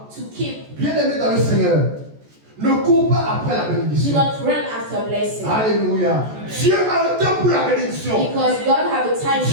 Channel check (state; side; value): late; left; 14 ms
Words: to keep. Bien aimé dans le Seigneur, ne cours pas après la Do bénédiction. not run after blessing. Alléluia. Dieu a un temps pour la bénédiction. Because God have a time